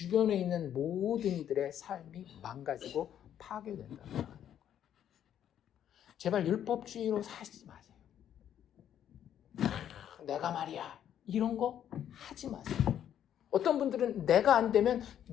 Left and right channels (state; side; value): quieter; right; 10.1 dB